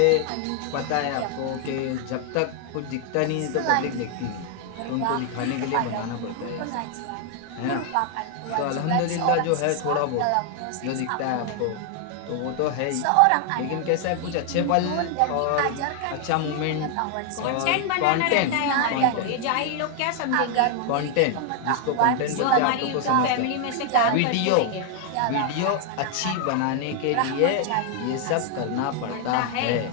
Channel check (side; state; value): both; different; correlation 0.00